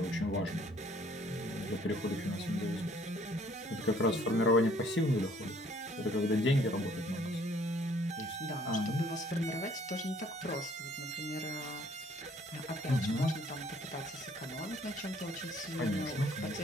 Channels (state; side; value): normal; both; correlation 0.60